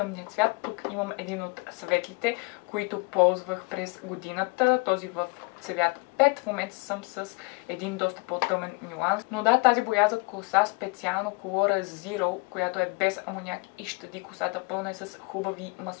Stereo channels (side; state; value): right; quieter; 29.3 dB